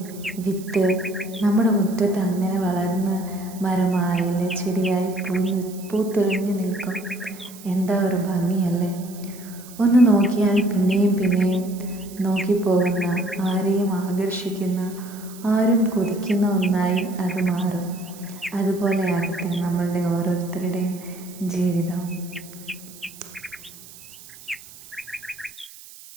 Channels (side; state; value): right; noise; hiss, 19 dB below the sound